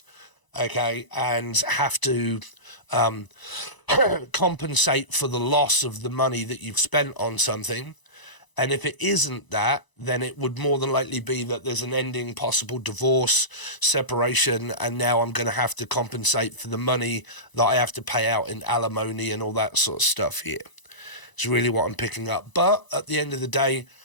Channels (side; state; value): right; late; 1.0 ms